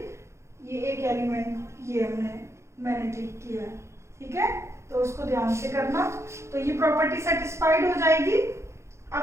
ये एक एलिमेंट ये मैंने ठीक किया है, ठीक है। तो उसको ध्यान से करना। तो ये प्रॉपर्टी सेटिस्फाइड हो जाएगी।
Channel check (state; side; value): late; left; 0.13 ms